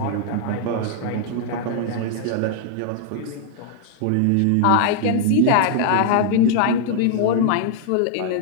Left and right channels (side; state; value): both; different; correlation -0.01